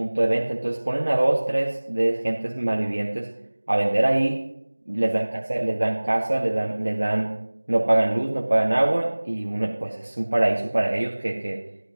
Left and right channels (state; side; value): inverted; both; correlation -1.00